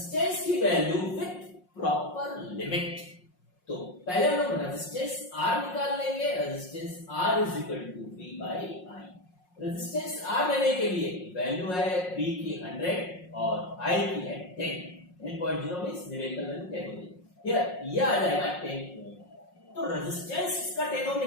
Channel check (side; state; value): right; late; 5.5 ms